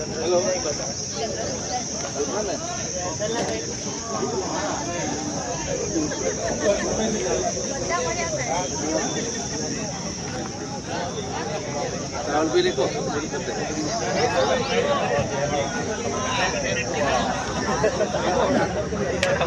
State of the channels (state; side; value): identical; both; correlation 1.00